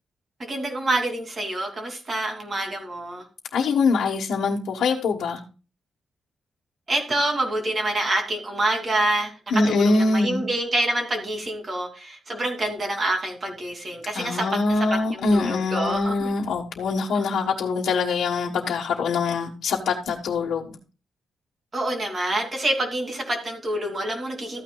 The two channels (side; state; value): both; normal; correlation 0.82